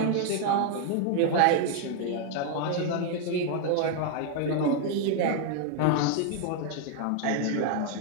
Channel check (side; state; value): both; different; correlation 0.00